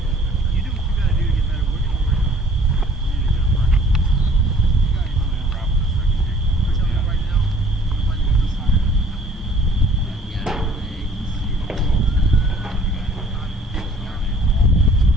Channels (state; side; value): normal; both; correlation 0.55